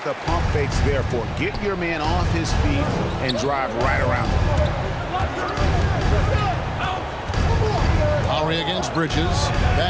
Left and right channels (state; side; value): identical; both; correlation 1.00